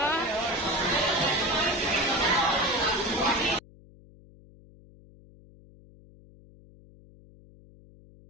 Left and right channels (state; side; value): noise; left; hum, 24 dB below the sound